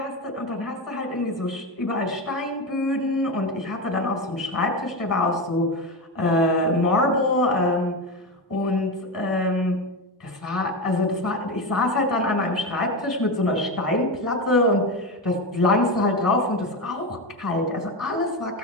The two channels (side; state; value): both; normal; correlation 0.17